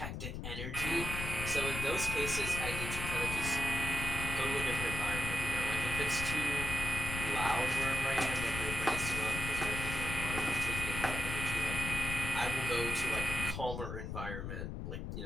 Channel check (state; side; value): noise; left; rumble, 5 dB below the sound